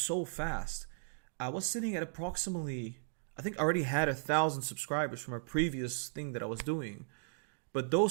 fast. I was sitting at approximately, I think I already had 1,000 subscribers from a previous thing that I was doing. But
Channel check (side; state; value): left; silent; digital silence